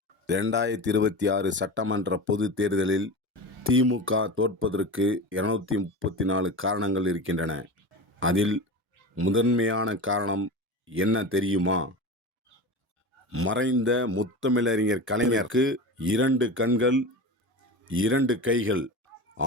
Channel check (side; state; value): both; normal; correlation 0.28